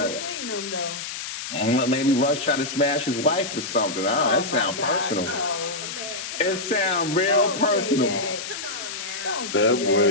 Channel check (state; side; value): noise; left; hiss, 7 dB below the sound